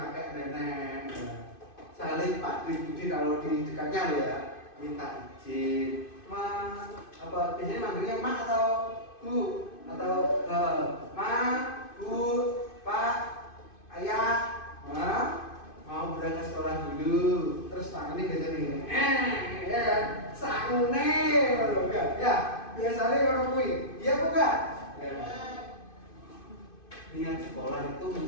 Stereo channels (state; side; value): late; right; 2.5 ms